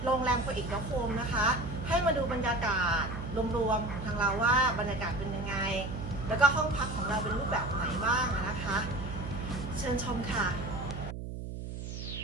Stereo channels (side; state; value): right; noise; hum, 7 dB below the sound